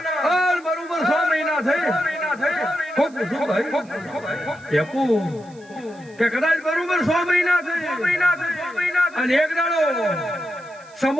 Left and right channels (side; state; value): right; noise; hiss, 28 dB below the sound